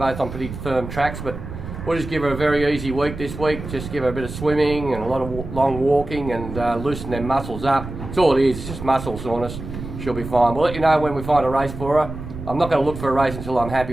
on pretty firm tracks. But we'll just give her a very easy week this week. Just give her a bit of swimming and a lot of long walking and loosen them muscles up. That's all it is, it's just muscle soreness. She'll be fine. We'll let you know when we find a race for her. I'm not going to look for a race until I'm happy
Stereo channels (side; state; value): right; noise; rumble, 10 dB below the sound